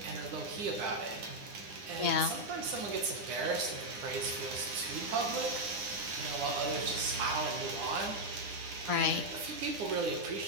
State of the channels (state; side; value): late; left; 9.8 ms